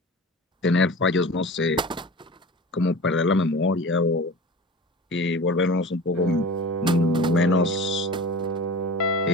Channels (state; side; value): normal; both; correlation 0.36